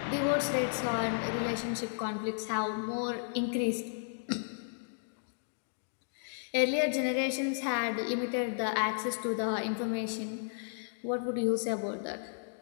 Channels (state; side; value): silent; right; digital silence